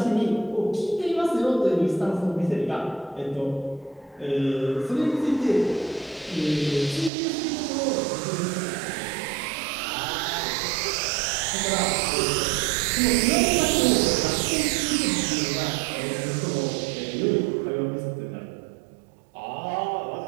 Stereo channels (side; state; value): left; drops out; at 7.1 s